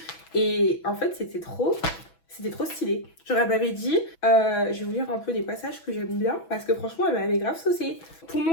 et en fait c'était trop stylé. Genre elle m'avait dit, je vais vous lire un peu des passages que j'aime bien parce que franchement elle m'avait grave saucé. Pour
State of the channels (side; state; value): right; late; 6.1 ms